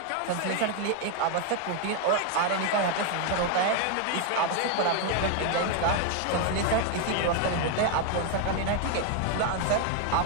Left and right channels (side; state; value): both; different; correlation 0.01